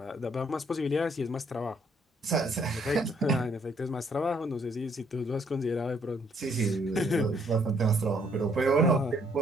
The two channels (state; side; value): normal; both; correlation 0.67